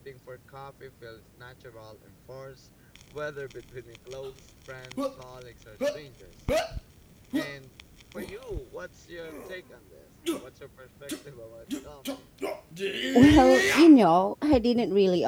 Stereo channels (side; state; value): both; identical; correlation 1.00